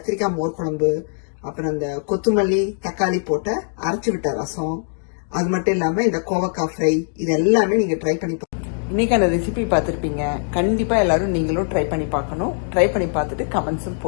மோர் குழம்பு, அப்புறம் இந்த கொத்தமல்லி தக்காளி போட்ட அரைச்சு விட்ட ரசம், அது மட்டும் இல்லாம இந்த கோவக்காய் ஃப்ரை, இது எல்லாமே நீங்க ட்ரை பண்ணி இன்னைக்கான ரெசிபி பார்த்துருப்பீங்க. கண்டிப்பா எல்லாரும் நீங்களும் ட்ரை பண்ணி பார்க்கணும். ட்ரை பண்ணி பார்த்துட்டு கமெண்ட்ஸும்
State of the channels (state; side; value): silent; right; digital silence